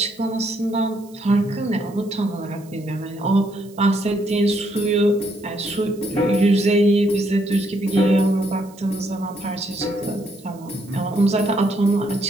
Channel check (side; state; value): right; noise; hiss, 26 dB below the sound